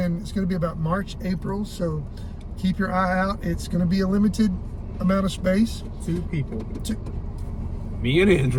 to be about March, April, so keep your eye out. It's going to be a limited amount of space. 2 people. Me and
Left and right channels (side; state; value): both; identical; correlation 1.00